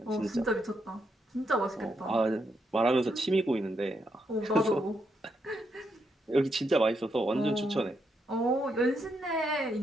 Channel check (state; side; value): normal; both; correlation 0.79